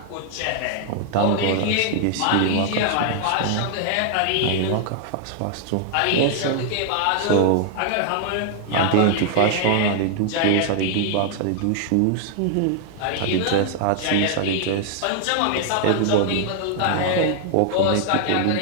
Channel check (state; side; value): different; both; correlation 0.00